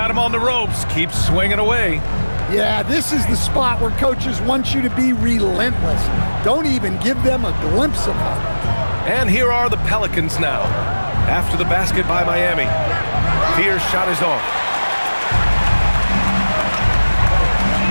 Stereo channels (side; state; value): both; inverted; correlation -1.00